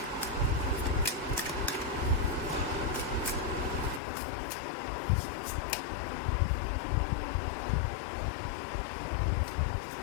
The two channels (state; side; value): drops out; right; at 4.0 s